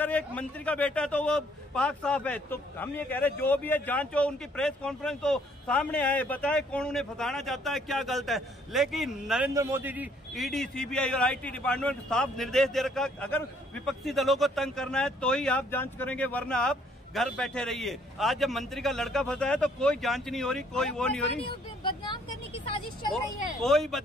एक मंत्री का बेटा है तो वो पाक साफ है। तो हम ये कह रहे हैं जो भी है जांच हो, उनकी प्रेस कॉन्फ्रेंस हो, सामने आए, बताए कौन उन्हें फंसाना चाहता है, क्या गलत है। लेकिन नरेंद्र मोदी जी ईडी, सीबीआई और आईटी डिपार्टमेंट को साफ निर्देश दे रखा, अगर विपक्षी दलों को तंग करना है तो ही आप जांच करेंगे, वरना आप घर बैठे रहिए। आज जब मंत्री का लड़का फंसा है तो कोई जांच नहीं हो रही, कोई वो नहीं हो रही। बदनाम करने की साजिश चल रही है। कोई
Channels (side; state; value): both; normal; correlation 0.64